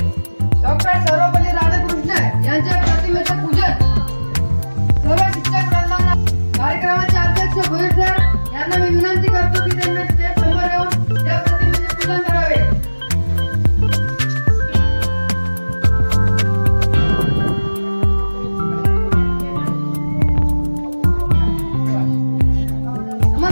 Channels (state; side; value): inverted; both; correlation -1.00